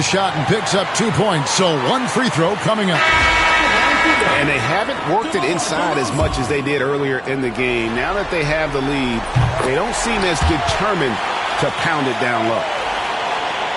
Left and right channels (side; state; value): both; identical; correlation 1.00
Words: shot and picks up 2 points. So one free throw coming up. And they haven't worked it inside as much as they did earlier in the game. Now that they have the lead, they don't seem as determined to pound it down low.